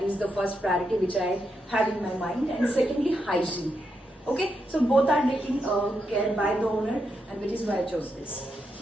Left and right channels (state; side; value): normal; both; correlation 0.83